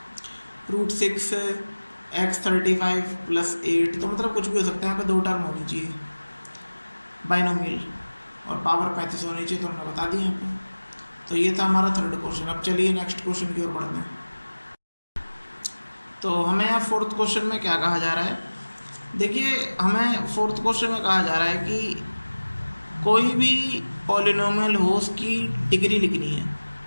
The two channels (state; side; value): inverted; both; correlation -1.00